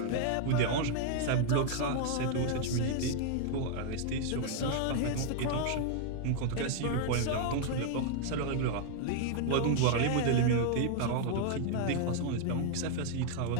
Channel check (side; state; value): both; different; correlation 0.00